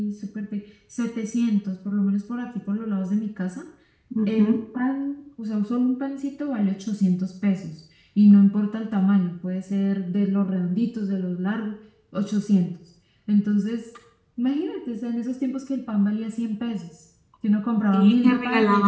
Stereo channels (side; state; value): both; identical; correlation 1.00